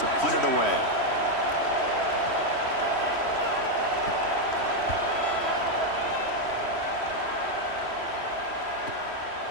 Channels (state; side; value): late; right; 3.1 ms